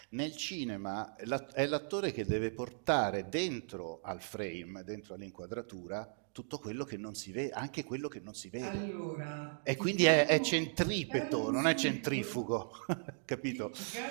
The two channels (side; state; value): left; silent; digital silence